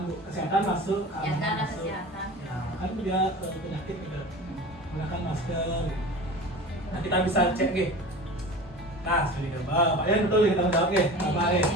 bu, kesehatan masuk. Ya keamanan ada masuk. kesehatan. Ya, kan dia penyakit gitu. Gunakan masker. Nah kita bisa cek gitu. Nah, sekali Pak ya betul kita jawab ya, Pak ya.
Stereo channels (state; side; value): normal; both; correlation 0.35